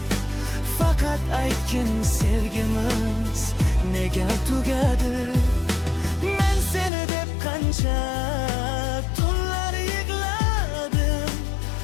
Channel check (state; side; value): drops out; right; at 6.9 s